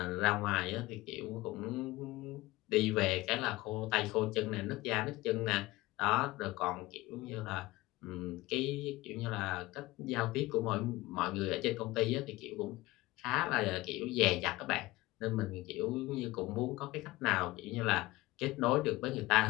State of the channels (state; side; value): quieter; right; 19.5 dB